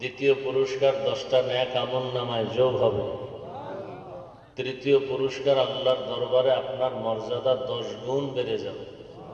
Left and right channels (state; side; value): identical; both; correlation 1.00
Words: দ্বিতীয় পুরস্কার 10টা নেক আমলনামায় যোগ হবে। তৃতীয় পুরস্কার আল্লাহর দরবারে আপনার মর্যাদা 10 গুণ বেড়ে যাবে।